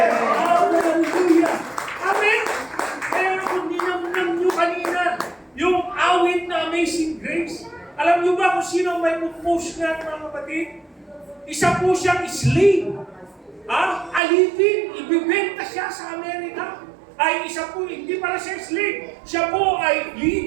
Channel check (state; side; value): drops out; left; at 14.2 s